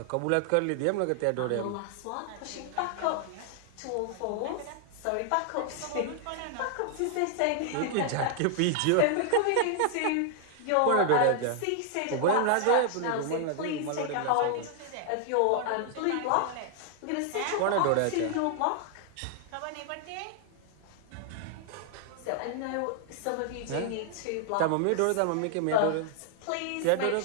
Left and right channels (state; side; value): different; both; correlation 0.00